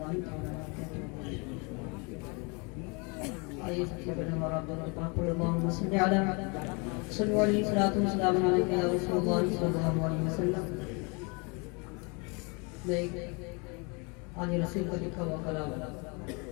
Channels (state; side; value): quieter; right; 31.1 dB